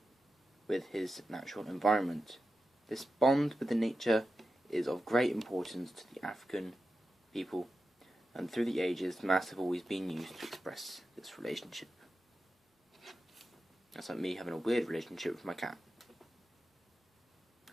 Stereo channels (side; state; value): both; normal; correlation 0.91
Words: with his natural environment. This bond with the nature is of great importance to the African people, and through the ages, masks have always been used to express this relationship. That's like me having a weird relationship with my cat.